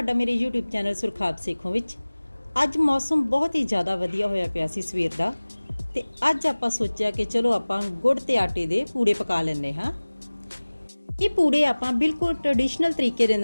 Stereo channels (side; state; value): both; inverted; correlation -1.00